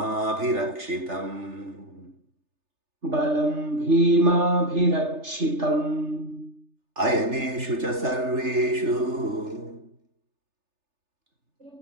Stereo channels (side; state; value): left; late; 3.3 ms